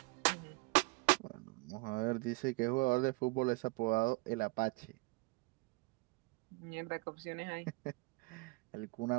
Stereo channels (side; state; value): left; quieter; 26.8 dB